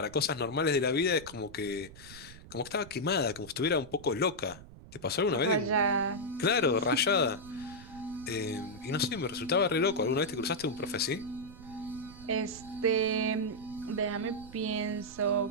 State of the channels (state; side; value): noise; right; rumble, 18 dB below the sound